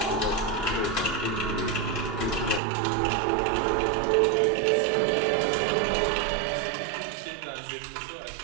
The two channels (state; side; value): drops out; left; at 2.6 s